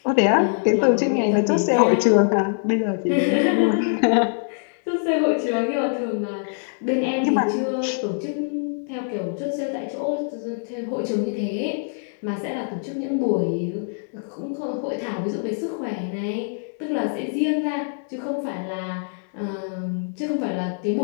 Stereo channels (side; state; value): right; silent; digital silence